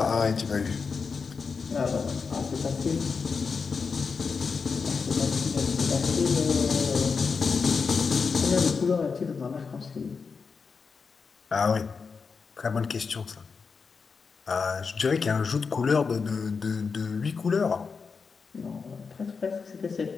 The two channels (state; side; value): quieter; right; 5.2 dB